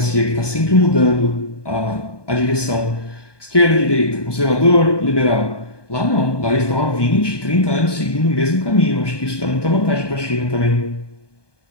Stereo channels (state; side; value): late; right; 1.2 ms